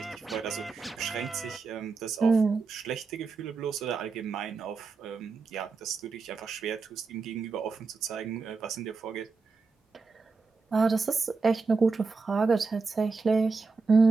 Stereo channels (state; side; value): quieter; left; 4.4 dB